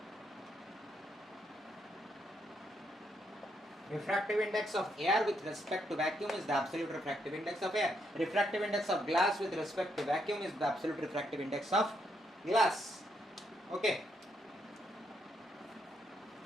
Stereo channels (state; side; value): normal; both; correlation 0.77